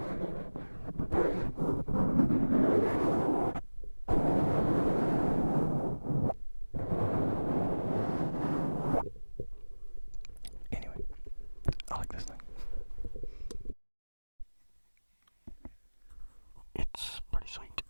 Anyway, I like this thing. It's pretty sweet.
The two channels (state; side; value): inverted; both; correlation -1.00